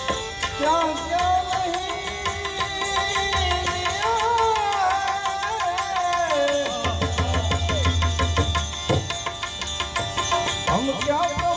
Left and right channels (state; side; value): identical; both; correlation 1.00